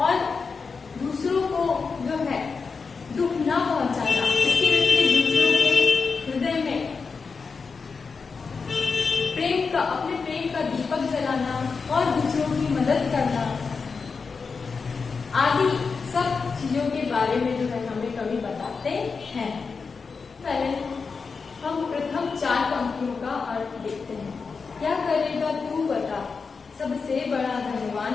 और दूसरों को जो है दुख न पहुंचाना, इसके विपरीत दूसरों के हृदय में अपने प्रेम का दीपक जलाना और दूसरों की मदद करना आदि सब चीजों के बारे में जो है हमें कवि बताते हैं। पहले हम प्रथम 4 पंक्तियों का अर्थ देखते हैं। क्या करेगा तू बता, सबसे बड़ा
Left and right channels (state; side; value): quieter; right; 5.0 dB